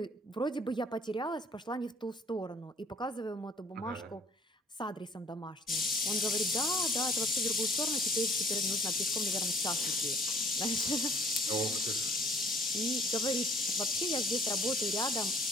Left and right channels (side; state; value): both; normal; correlation 0.55